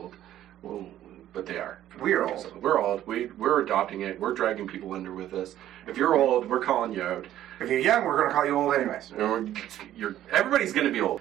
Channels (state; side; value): quieter; left; 12.4 dB